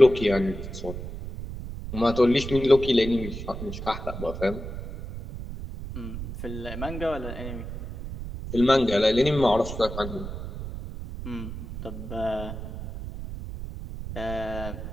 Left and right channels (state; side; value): noise; right; rumble, 8 dB below the sound